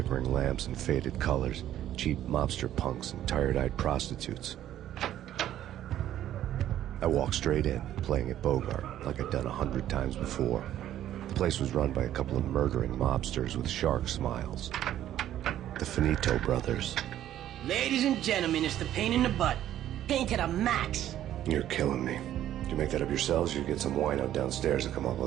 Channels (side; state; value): left; quieter; 12.0 dB